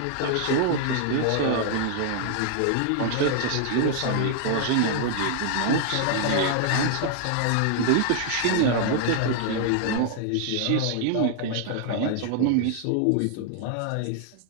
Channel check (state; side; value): different; both; correlation 0.00